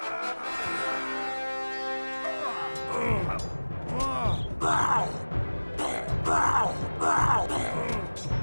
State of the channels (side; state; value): both; inverted; correlation -1.00